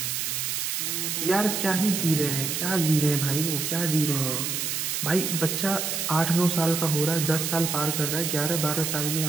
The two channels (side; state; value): right; noise; hiss, 1 dB below the sound